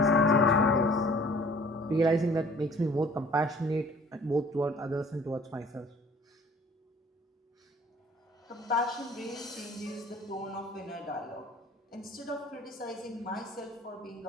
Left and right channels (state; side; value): normal; both; correlation 0.52